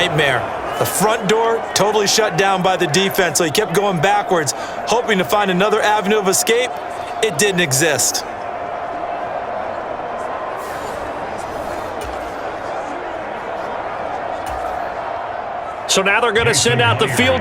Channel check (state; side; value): identical; both; correlation 1.00